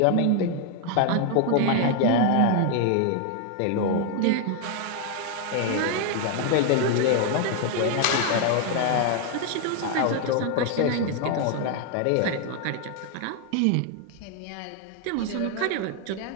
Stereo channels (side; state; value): both; different; correlation 0.01